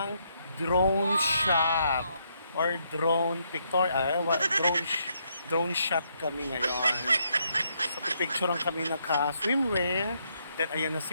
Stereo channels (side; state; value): both; inverted; correlation -0.75